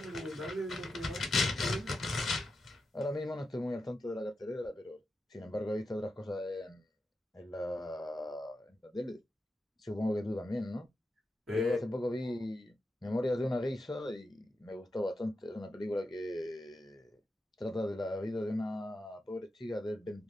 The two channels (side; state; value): both; normal; correlation 0.88